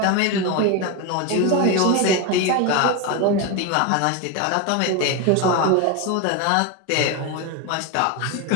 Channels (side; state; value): both; different; correlation 0.03